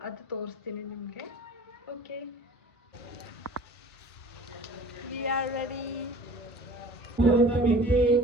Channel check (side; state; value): both; normal; correlation 0.45